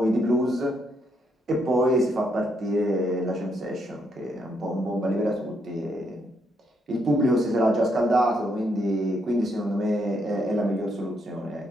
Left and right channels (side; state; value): both; normal; correlation 0.76